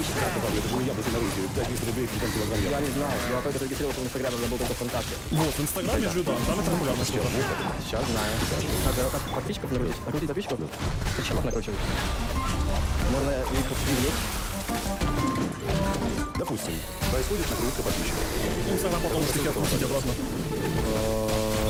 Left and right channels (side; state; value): both; identical; correlation 1.00